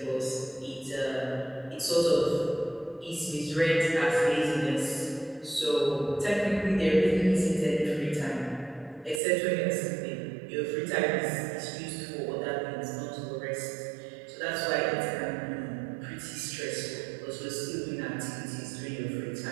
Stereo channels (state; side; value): drops out; left; at 9.2 s